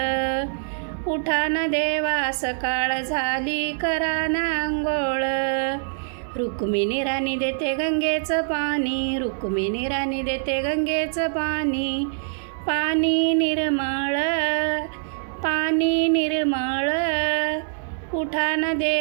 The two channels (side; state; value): left; silent; digital silence